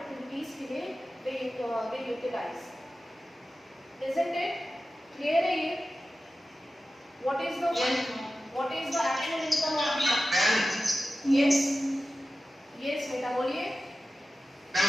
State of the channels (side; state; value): both; normal; correlation 0.94